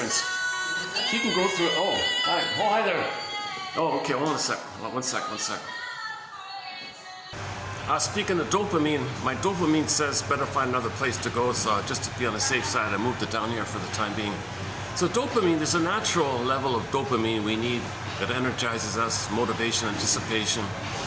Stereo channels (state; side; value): identical; both; correlation 1.00